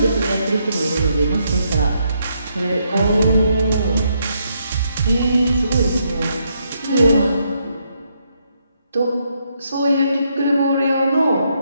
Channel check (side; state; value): both; inverted; correlation -0.76